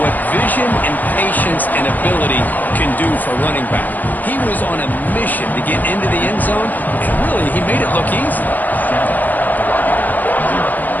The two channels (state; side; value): late; right; 0.083 ms